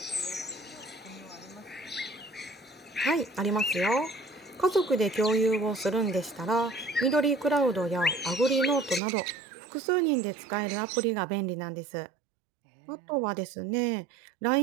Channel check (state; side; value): drops out; left; at 9.0 s